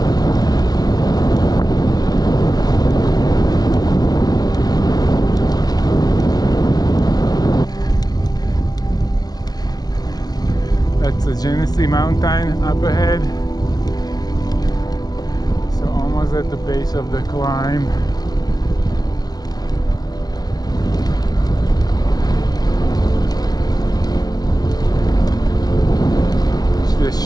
That's the Genesee Mountain up ahead. So almost at the base of the climb. It's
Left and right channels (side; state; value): right; late; 0.19 ms